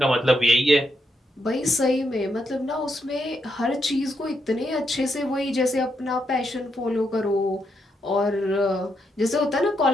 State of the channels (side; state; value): both; normal; correlation 0.80